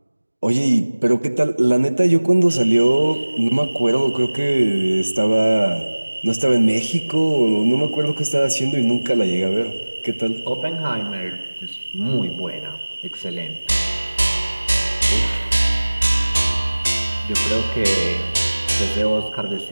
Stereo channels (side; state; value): both; inverted; correlation -1.00